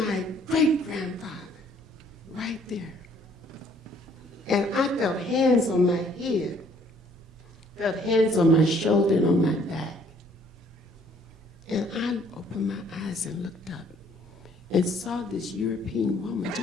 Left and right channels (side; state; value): both; normal; correlation 0.61